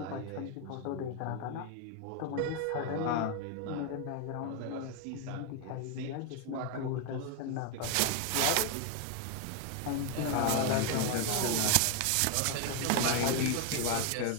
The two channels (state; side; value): different; both; correlation 0.01